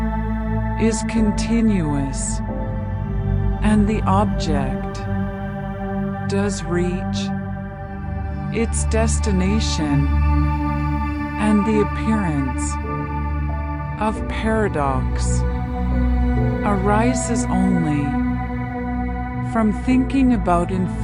is continuous and the object does reach its destination, and the appearance of paradox arises only from thinking about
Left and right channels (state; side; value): identical; both; correlation 1.00